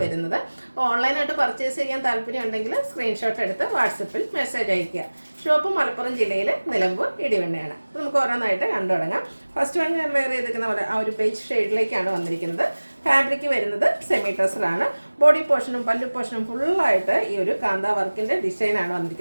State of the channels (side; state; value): both; inverted; correlation -1.00